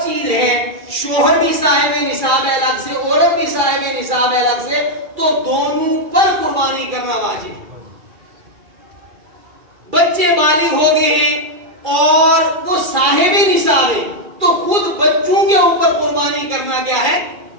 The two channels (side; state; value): left; late; 2.3 ms